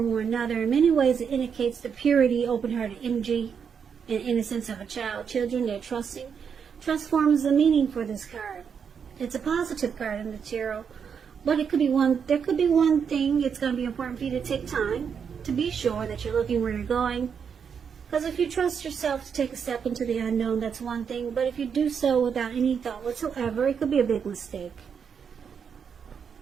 or another. In many ways, it indicates the purity, open-hearted energy, and innocence of a child. Children, they're trusting. Trust forms the meaning for this card. It's a positive card in the tarot, but there could be one thing. It's going to be important for you to take time to be sure that you're looking where you're going. Because if you trust yourself to take a step into the unknown, that's one thing. But if you do so without any thought whatsoever, it could be a big mistake.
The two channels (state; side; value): quieter; left; 6.9 dB